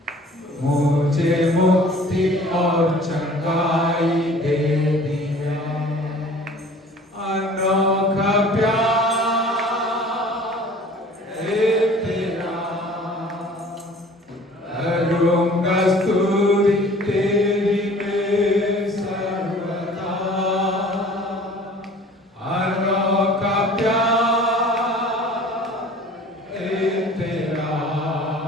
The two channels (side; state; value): both; normal; correlation 0.48